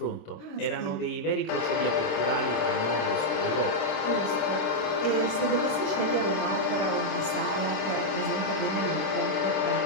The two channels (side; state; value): right; late; 26 ms